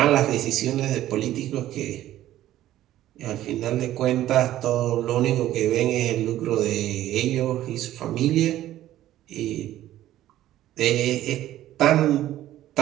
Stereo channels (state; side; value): quieter; left; 13.6 dB